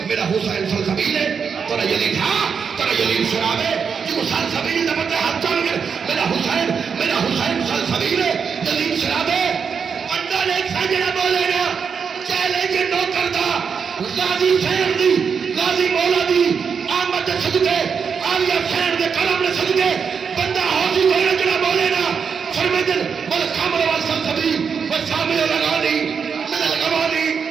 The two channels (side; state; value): left; quieter; 6.3 dB